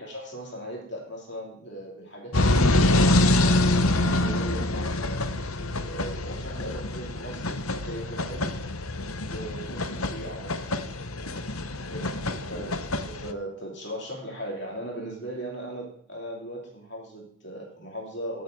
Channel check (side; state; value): both; normal; correlation 0.48